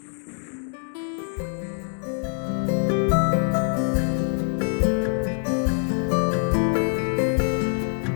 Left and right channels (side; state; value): right; silent; 62 dB below the other